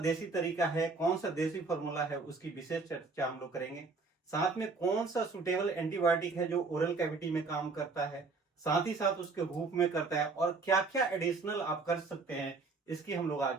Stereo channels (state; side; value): quieter; left; 4.1 dB